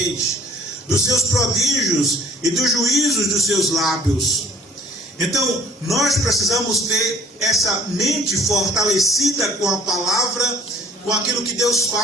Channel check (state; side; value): normal; both; correlation 0.54